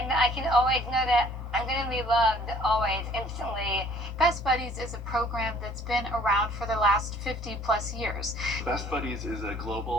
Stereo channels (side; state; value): both; normal; correlation 0.56